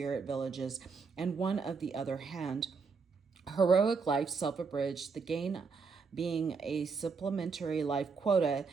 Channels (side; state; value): left; quieter; 5.0 dB